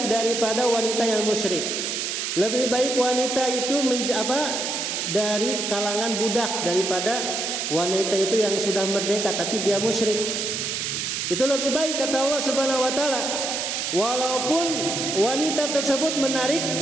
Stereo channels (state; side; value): noise; right; hiss, 2 dB below the sound